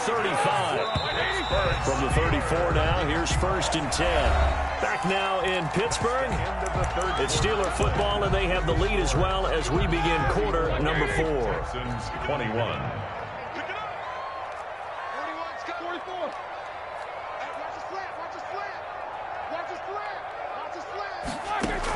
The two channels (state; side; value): identical; both; correlation 1.00